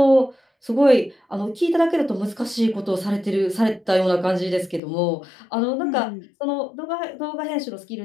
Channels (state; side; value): drops out; right; at 4.8 s